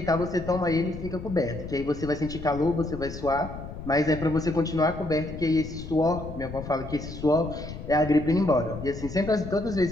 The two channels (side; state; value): left; noise; rumble, 10 dB below the sound